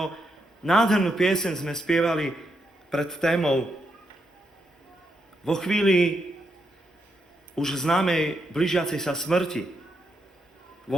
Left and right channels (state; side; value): normal; both; correlation 0.81